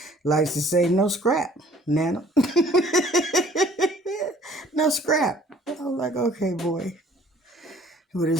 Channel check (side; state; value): both; normal; correlation 0.55